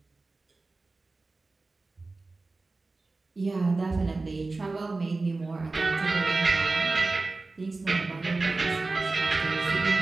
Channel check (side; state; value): left; quieter; 3.5 dB